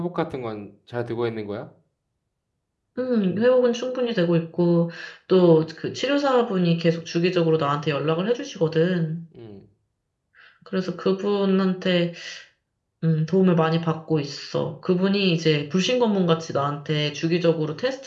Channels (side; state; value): both; identical; correlation 1.00